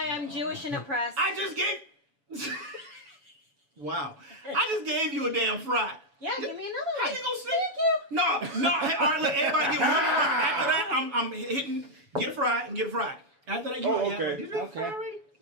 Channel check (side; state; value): left; late; 7.1 ms